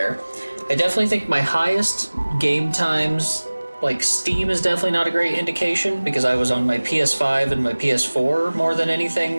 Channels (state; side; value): inverted; both; correlation -1.00